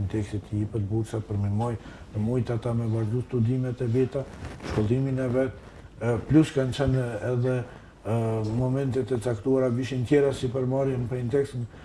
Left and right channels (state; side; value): identical; both; correlation 1.00